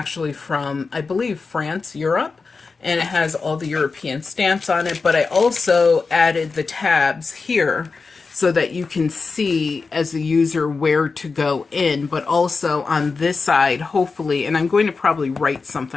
from, I believe, France, Europe. And it has all the European stamps on it. But I also added the tabs here so that you can see as a user where to go in. But also on this side, hopefully, and I'm going to probably write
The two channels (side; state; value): right; quieter; 4.5 dB